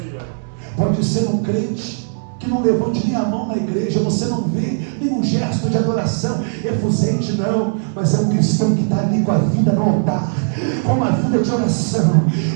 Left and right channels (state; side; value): silent; left; 67 dB below the other